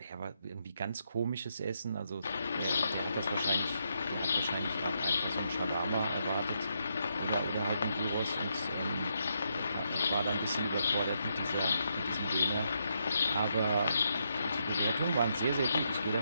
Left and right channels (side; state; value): both; inverted; correlation -0.79